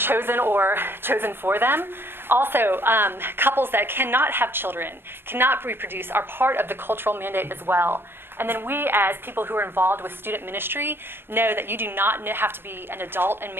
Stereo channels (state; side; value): late; left; 0.11 ms